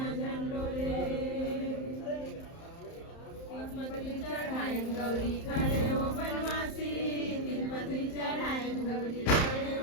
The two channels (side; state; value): right; late; 31 ms